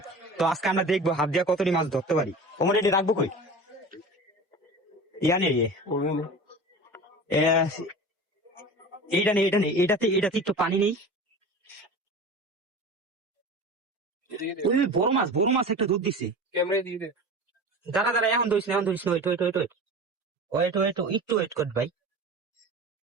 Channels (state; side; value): normal; both; correlation 0.34